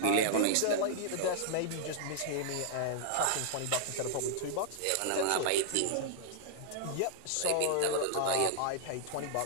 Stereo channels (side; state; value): both; different; correlation -0.01